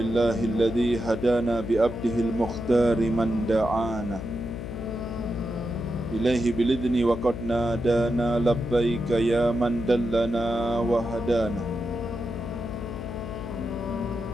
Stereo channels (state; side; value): noise; left; hum, 8 dB below the sound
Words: hadana bi'abdihil mukhtari man da'ana ilaihi bilidni wa qad nadana labbaika ya man dallana wa hadana.